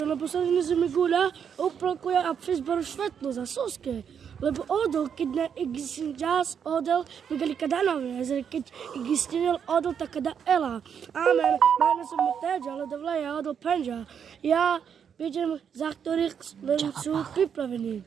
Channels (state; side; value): quieter; left; 7.6 dB